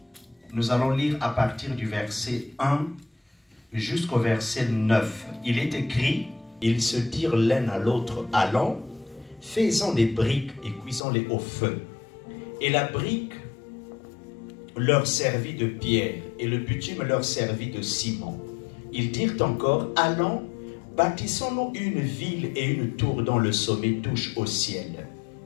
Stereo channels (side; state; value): right; drops out; at 11.0 s